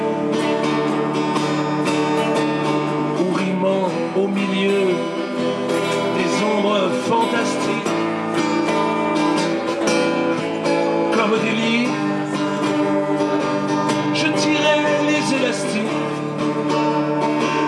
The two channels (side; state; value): both; identical; correlation 1.00